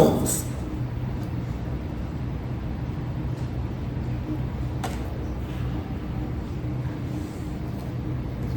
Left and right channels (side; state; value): both; identical; correlation 1.00